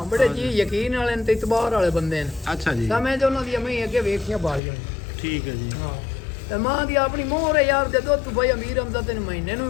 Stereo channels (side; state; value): right; drops out; at 4.6 s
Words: ਬੜੇ ਜੀ ਯਕੀਨ ਵਾਲੇ ਨੇ ਤੇ ਇਤਬਾਰ ਵਾਲੇ ਬੰਦੇ ਨੇ। ਅੱਛਾ ਜੀ ਤਾਂ ਮੈਂ ਜੋ ਉਹਨਾਂ ਦੀ ਅਮੀ ਅੱਗੇ ਵੇਖੀਆਂ ਬਾਲੀਆਂ ਨੇ। ਠੀਕ ਹੈ ਜੀ। ਹਾਂ ਤੇ ਮਾਂ ਦੀ ਆਪਣੀ ਮੋਹਰ ਹੈ ਯਾਰ ਦੇ ਦੁੱਧ ਭਾਈ ਅਮੀਰ ਅਮਦਾ ਤੈਨੂੰ ਮਹੀਨੇ